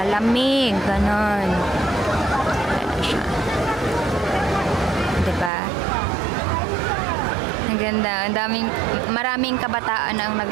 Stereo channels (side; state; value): left; drops out; at 5.5 s